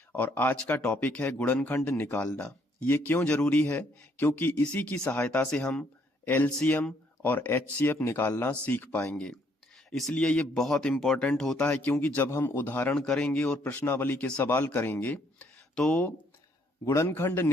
और आज का टॉपिक है गुणनखंड निकालना। ये क्यों जरूरी है? क्योंकि इसी की सहायता से हम एलसीएम और एचसीएफ निकालना सीख पाएंगे। इसलिए ये बहुत इंपॉर्टेंट होता है, क्योंकि जब हम उदाहरण करेंगे और प्रश्नावली के सवाल करेंगे तो गुणनखंड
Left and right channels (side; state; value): both; normal; correlation 0.68